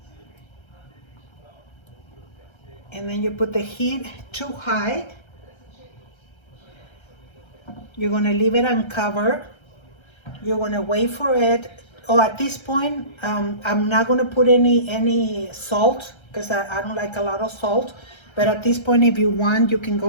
And then you put the heat too high. You're going to leave it uncovered. You're going to wait for it. Oh, at this point, I'm not going to put any salt, because I don't like a lot of salt. But at this point, if you want, you can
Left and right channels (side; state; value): right; late; 1.3 ms